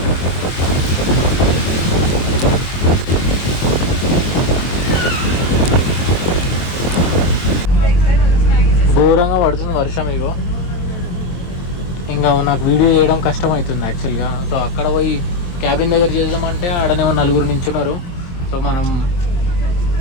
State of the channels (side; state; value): right; late; 23 ms